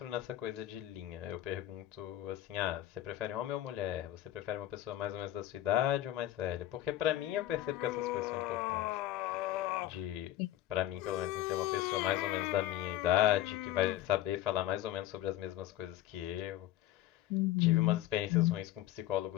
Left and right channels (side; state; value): right; quieter; 13.7 dB